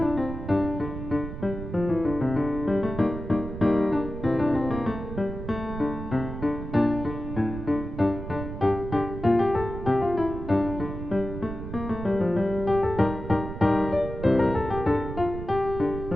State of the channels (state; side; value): noise; right; rumble, 8 dB below the sound